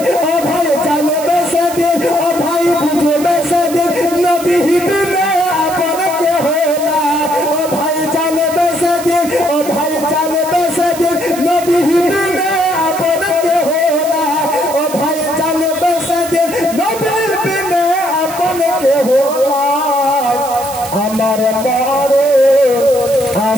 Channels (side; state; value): right; noise; hiss, 13 dB below the sound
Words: ও ভাই জানবে সেদিন, ও ভাই বুঝবে সেদিন নবী বিনে আপন কেহ না, ও ভাই জানবে সেদিন, ও ভাই জানবে সেদিন নবী বিনে আপন কেহ না, ও ভাই জানবে সেদিন নবী বিনে আপন কেহ না, আমার মরণ